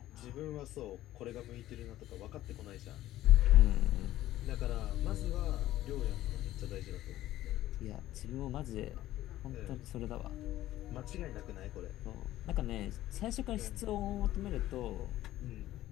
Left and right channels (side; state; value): right; quieter; 14.5 dB